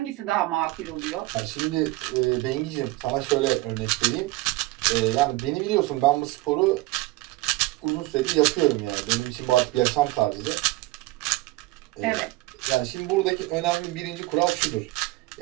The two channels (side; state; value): left; quieter; 19.4 dB